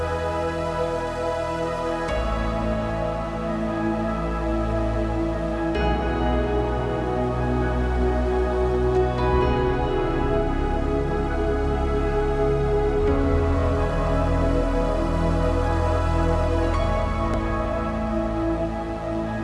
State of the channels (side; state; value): both; identical; correlation 1.00